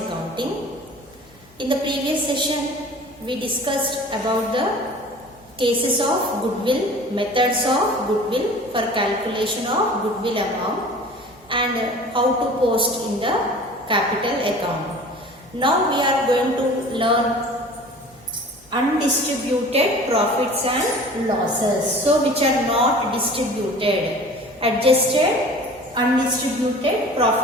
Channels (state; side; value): normal; both; correlation 0.43